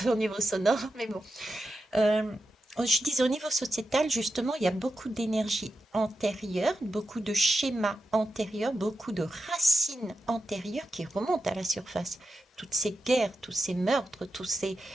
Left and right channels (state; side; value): normal; both; correlation 0.89